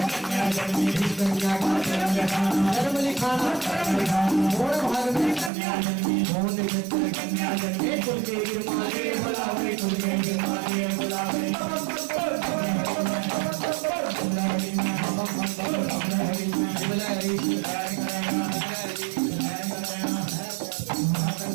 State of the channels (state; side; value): drops out; left; at 5.5 s